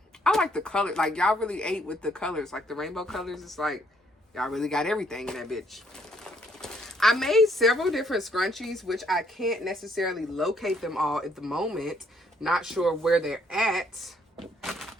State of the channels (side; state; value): both; normal; correlation 0.68